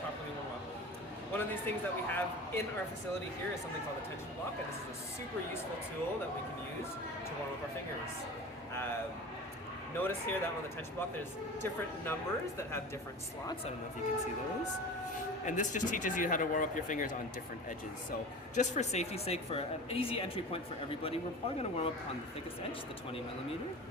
warm up. One of these things that we have in our facility here is something called a tension block, and this is a super useful tool that we can use to warm up our fingers. Notice here that on the tension block there's different numbers that have different slots. I don't know if you can see those. And this just teaches you how to warm up your fingers on different edges. So just for safety's sake, for an easy entry point for everybody, we're probably going to warm up on the thickest edge, the 20 millimeter.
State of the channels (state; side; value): normal; both; correlation 0.34